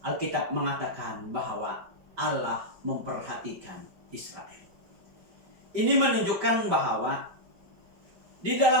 Alkitab mengatakan bahwa Allah memperhatikan Israel. Ini menunjukkan bahwa di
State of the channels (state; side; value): late; left; 5.2 ms